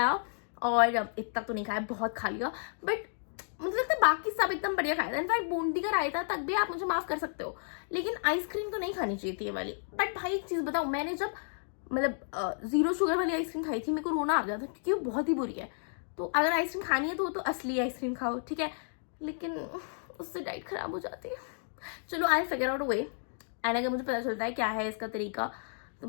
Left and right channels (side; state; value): right; silent; digital silence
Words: और इतना तो नहीं खाया, बहुत खा लिया, बट मुझे लगता है बाकी सब एकदम बढ़िया खाया था। इनफैक्ट बूंदी का रायता तक भी आप मुझे माफ कर सकते हो, लेकिन आइसक्रीम तो नहीं खानी चाहिए थी ये वाली। बट भाई एक चीज बताऊं, मैंने जब मतलब 0 शुगर वाली आइसक्रीम खाई थी, मेरे को रोना आ गया था, क्योंकि वो बहुत ही बुरी है। तो अगर आइसक्रीम खानी है तो वो तो असली आइसक्रीम खाओ, ठीक है, लेकिन उससे डाइट खराब हो जाती है। चलो I figure out a way, and अगर मुझे पता चलता है क्या है इसका तरीका तो